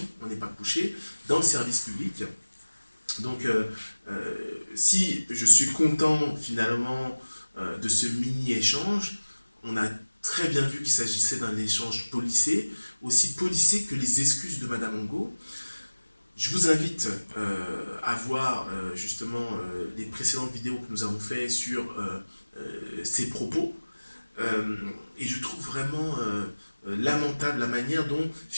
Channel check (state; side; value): inverted; both; correlation -1.00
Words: on n'est pas couché, dans le service public. Donc, si je suis content finalement de ce mini-échange, on a très bien vu qu'il s'agissait d'un échange policé, aussi policé que les excuses de Madame Angot. Je vous invite à voir justement les précédentes vidéos que nous avons faites sur ses propos. Et je trouve vraiment lamentable la manière dont